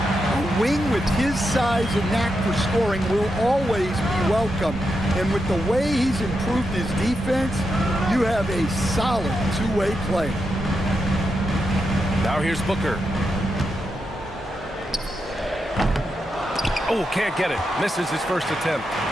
wing with his size and knack for scoring will always be welcome. And with the way he's improved his defense, you have a solid two-way player. Now here's Booker. Oh, can't get it. Misses his first attempt.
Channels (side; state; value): both; normal; correlation 0.85